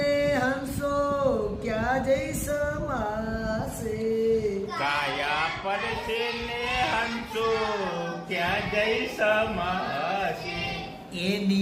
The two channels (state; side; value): identical; both; correlation 1.00